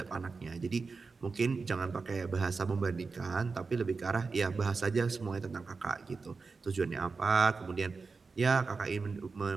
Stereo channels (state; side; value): quieter; left; 4.5 dB